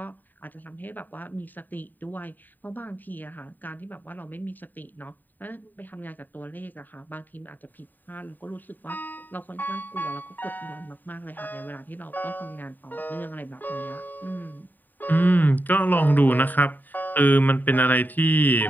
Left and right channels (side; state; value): right; late; 0.089 ms